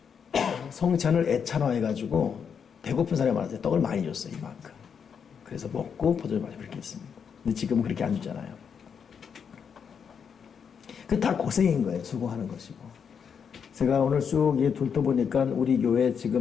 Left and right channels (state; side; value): quieter; right; 7.0 dB